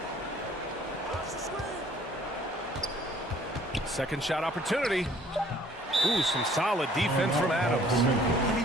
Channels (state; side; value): normal; both; correlation 0.57